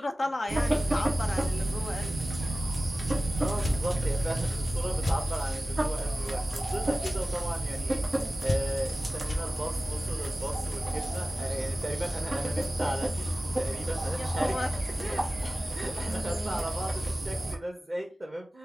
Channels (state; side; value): normal; both; correlation 0.96